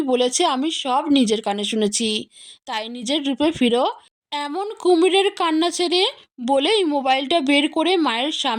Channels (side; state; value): both; identical; correlation 1.00